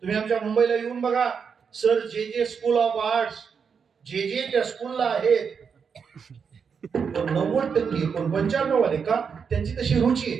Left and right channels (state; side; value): quieter; left; 6.3 dB